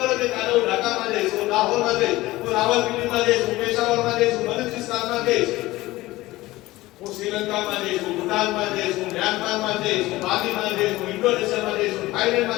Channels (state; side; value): quieter; right; 18.4 dB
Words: કે કાલે હું ઢાકામાં જઈશ, હું લાહોરમાં જઈશ, હું રાવલપિંડીમાં જઈશ, હું પેશાવરમાં જઈશ, હું બલુચિસ્તાનમાં જઈશ, હું શ્રીલંકામાં જઈશ, હું ભૂટાનમાં જઈશ, હું મ્યાનમારમાં જઈશ, હું બાલીમાં જઈશ, હું ઇન્ડોનેશિયામાં જઈશ, હું